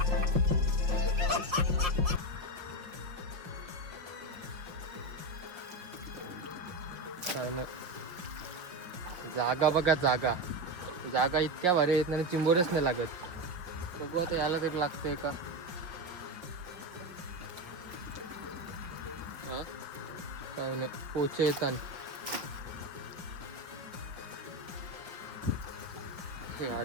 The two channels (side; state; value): left; late; 5.6 ms